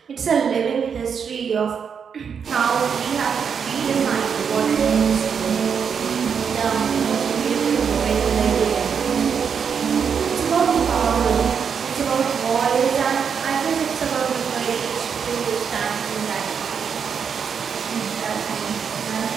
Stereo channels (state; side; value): quieter; left; 6.8 dB